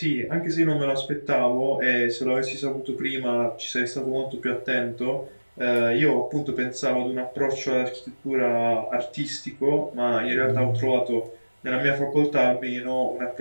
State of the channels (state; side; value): inverted; both; correlation -1.00